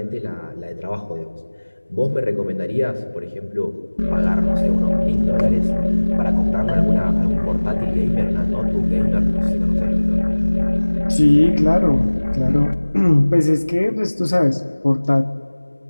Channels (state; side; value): inverted; both; correlation -1.00